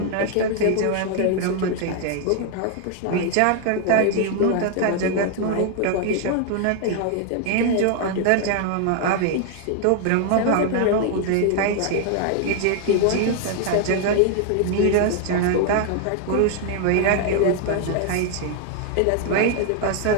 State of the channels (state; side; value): different; both; correlation 0.00